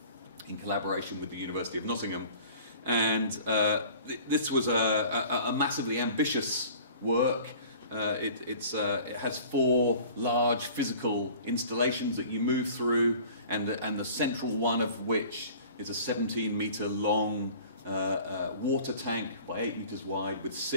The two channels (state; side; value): inverted; both; correlation -0.47